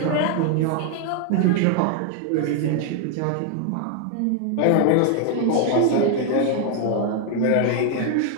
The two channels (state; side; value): different; both; correlation 0.00